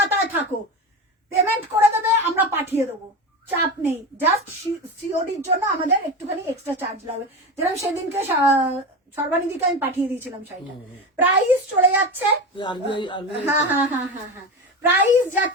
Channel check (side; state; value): both; normal; correlation 0.23